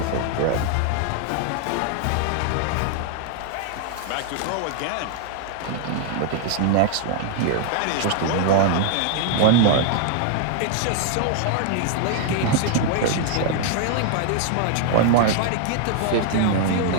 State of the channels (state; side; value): different; both; correlation 0.00